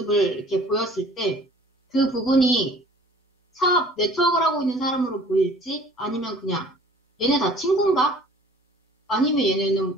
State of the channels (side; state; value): both; normal; correlation 0.50